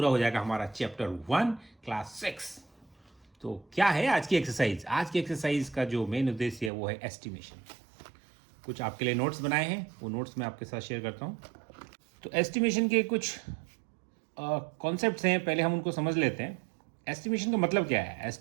हो जाएगा हमारा चैप्टर 1 क्लास 6। तो क्या है आज की एक्सरसाइज? आज की एक्सरसाइज का जो मेन उद्देश्य है वो है एस्टिमेशन। कुछ आपके लिए नोट्स बनाए हैं, वो नोट्स मैं आपके साथ शेयर करता हूँ। तो एस्टिमेशन के कुछ कॉन्सेप्ट्स हैं, पहले हम उनको समझ लेते हैं। एस्टिमेशन का मतलब क्या है?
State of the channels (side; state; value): left; drops out; at 6.7 s